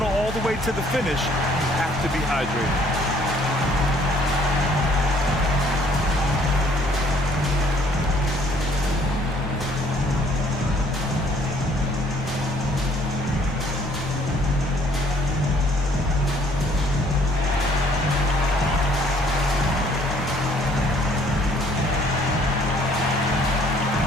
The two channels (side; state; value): both; normal; correlation 0.61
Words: all the way to the finish, you have to be hydrated.